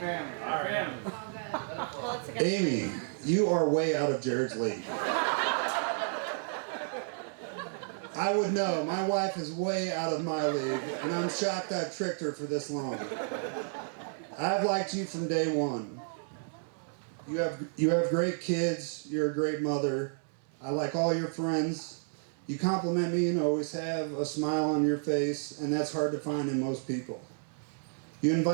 Family. Amy, you are way out of Jared's league. I would know. My wife is way out of my league, and I'm shocked I've tricked her for this long. I've liked you from day one. You have great kids. You're a great mother. I like all your friends. You compliment me and always have a smile on your face, and that's hard to find in most people. You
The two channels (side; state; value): left; silent; 57 dB below the other